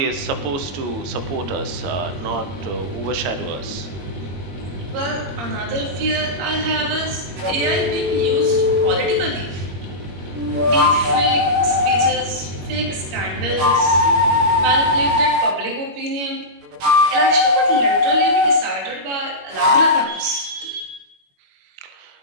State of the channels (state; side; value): late; left; 21 ms